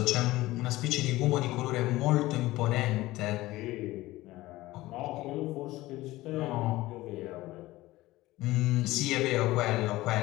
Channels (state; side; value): quieter; right; 18.0 dB